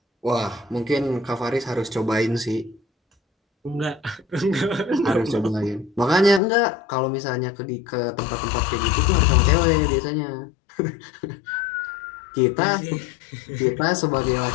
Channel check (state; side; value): drops out; right; at 6.4 s